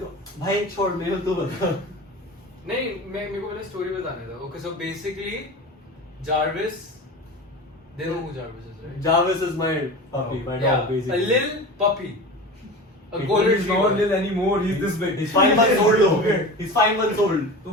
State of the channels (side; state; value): both; normal; correlation 0.31